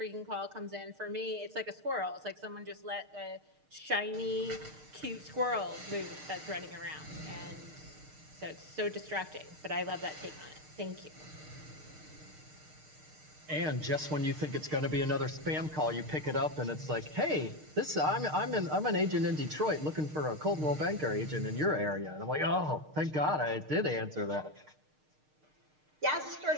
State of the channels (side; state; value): left; late; 6.5 ms